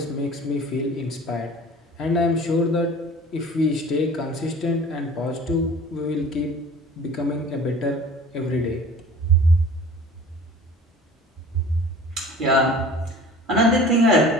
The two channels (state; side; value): normal; both; correlation 0.44